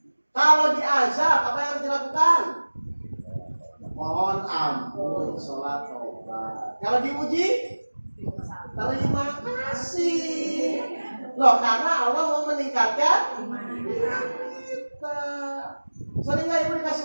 Kalau diazab, apa yang harus dilakukan? Mohon ampun, sholat, tobat. Kalau diuji, terima kasih. Loh, karena Allah mau meningkatkan iman kita. Sering nggak ibu dikasih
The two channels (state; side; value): inverted; both; correlation -1.00